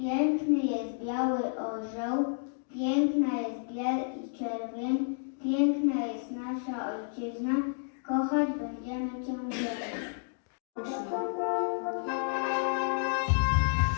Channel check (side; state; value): right; silent; digital silence